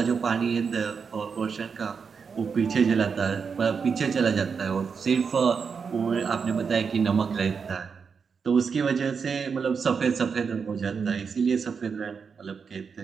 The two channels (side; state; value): left; quieter; 5.8 dB